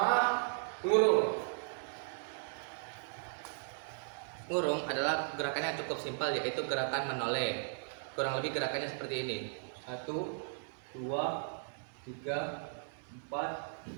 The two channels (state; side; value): silent; left; digital silence